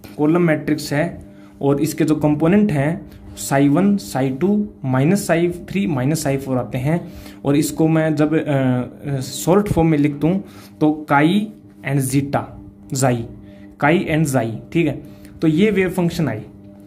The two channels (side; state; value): both; identical; correlation 1.00